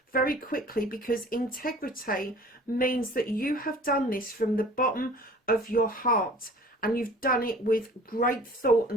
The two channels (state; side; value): normal; both; correlation 0.47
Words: very quickly, because integrity means that you have done this from the bottom of your heart, and you've done it with great thought